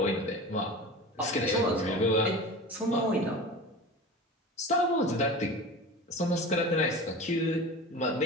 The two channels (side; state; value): both; normal; correlation 0.33